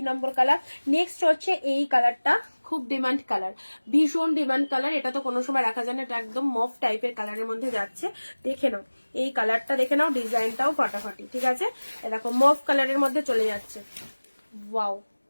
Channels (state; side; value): inverted; both; correlation -1.00